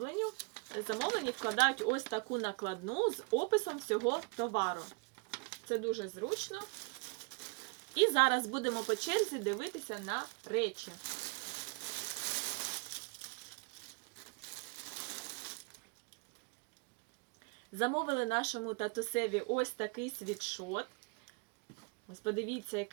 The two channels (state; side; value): quieter; left; 33.5 dB